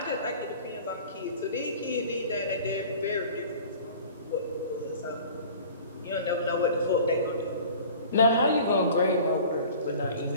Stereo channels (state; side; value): inverted; both; correlation -0.43